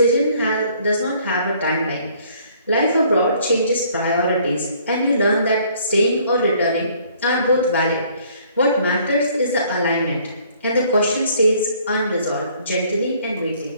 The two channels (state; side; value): inverted; both; correlation -0.60